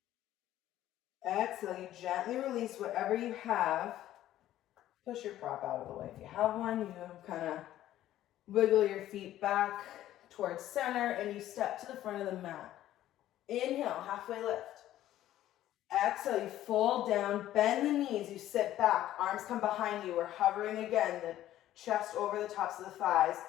Exhale, you gently release whatever you have. Push your prop out of the way. If you have one, you kind of wiggle your feet back towards center and you step to the front of the mat. Inhale, halfway lift. Exhale, you fold down, bend the knees, you sit back, arms come behind you. We're hovering again, the chest over the tops of the thighs.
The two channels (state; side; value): quieter; right; 13.3 dB